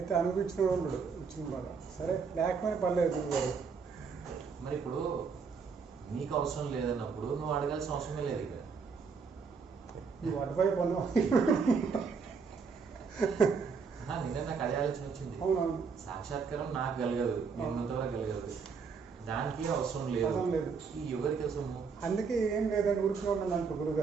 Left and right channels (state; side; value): quieter; left; 5.5 dB